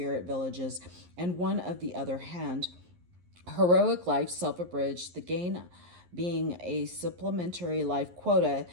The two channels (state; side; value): late; left; 11 ms